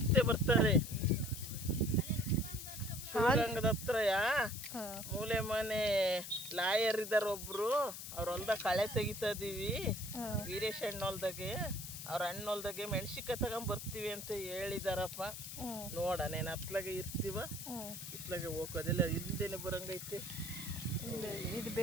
ಬರ್ತಾರೆ. ಶಿವಗಂಗದ ಹತ್ರ ಮೂಲೆ ಮನೆ ಲಾಯರ್ ಇದಾರ ಒಬ್ರು, ಅವ್ರ ಹೊಲ್ದಾಗ ಕಳೆ ತೆಗಿತಾ ಇದೀವಿ. ವೀರೇಶ್ ಅಣ್ಣ ಹೊಲ್ದಾಗೆ, ಅವ್ರ ಅಣ್ಣ ಹೊಲ್ದಾಗೆ ಮೆಣಸಿನ್ಕಾಯಿ ತಗೊಂಡ್ ಬರ್ತೀವಿ ಅಂತ ಹೇಳಿದಾರಪ್ಪ. ನೋಡನೇನು ಹತ್ಲಾಗೆ ಇರ್ತೀವ, ಇತ್ಲಾಗೆ ಹೋಗೋದಿಲ್ಲ. ಹಿಂದೆನೆ ಬರಂಗೈತಿ. ಇದು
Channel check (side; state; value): left; noise; hiss, 9 dB below the sound